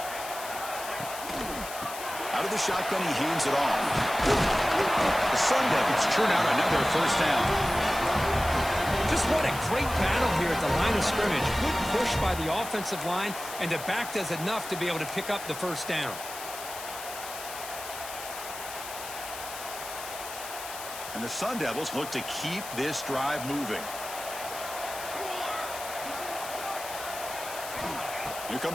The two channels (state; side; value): noise; left; hiss, 10 dB below the sound